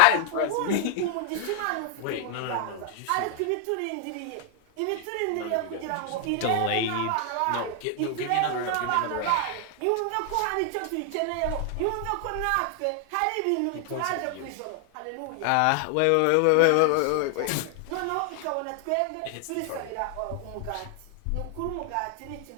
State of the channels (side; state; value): both; different; correlation 0.00